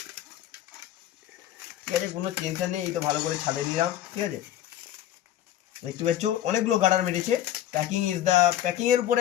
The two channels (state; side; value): quieter; right; 12.1 dB